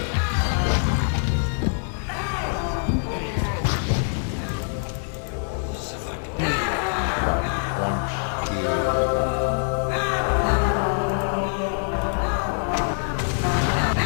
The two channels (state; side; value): silent; right; 62 dB below the other